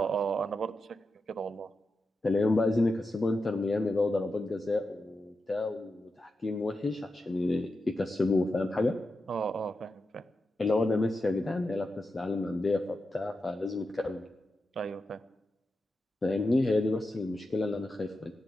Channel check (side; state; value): both; normal; correlation 0.89